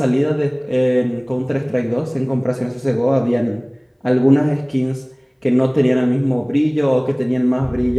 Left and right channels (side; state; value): both; identical; correlation 1.00